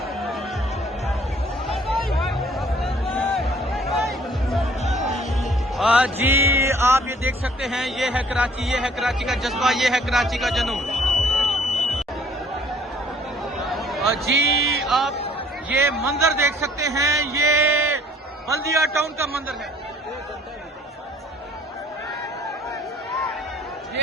जी आप ये देख सकते हैं, ये है कराची, ये है कराची का जज्बा, ये है कराची का जुनून। जी आप ये मंजर देख सकते हैं, ये बल्दिया टाउन का मंजर है।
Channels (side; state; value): both; normal; correlation 0.57